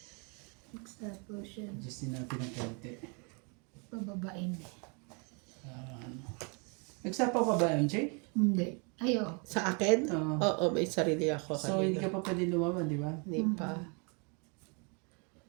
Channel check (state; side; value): quieter; left; 34.6 dB